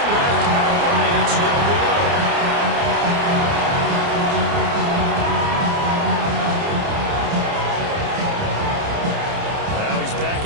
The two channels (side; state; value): left; late; 29 ms